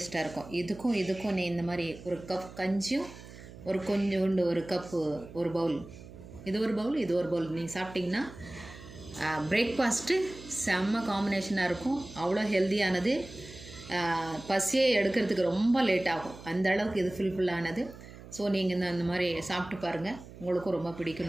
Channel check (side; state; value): right; noise; hum, 16 dB below the sound